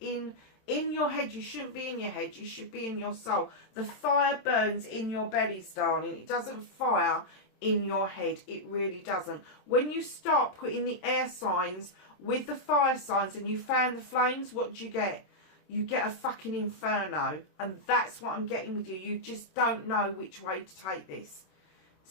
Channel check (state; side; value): late; right; 26 ms